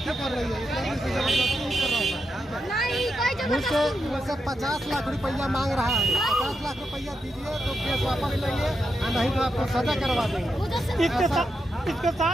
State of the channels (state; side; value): normal; both; correlation 0.85